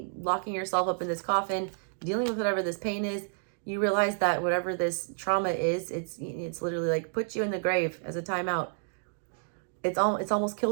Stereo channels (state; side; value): silent; left; digital silence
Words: locking yourself up in this coffin, dealing with whatever this pain is. You realize that whatever this trauma is, it's literally like put you in the grave as a timeout. It's almost